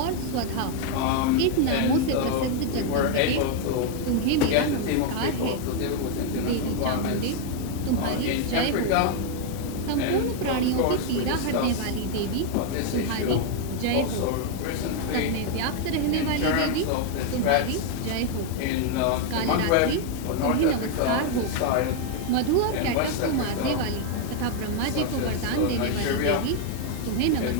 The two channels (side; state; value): both; different; correlation 0.00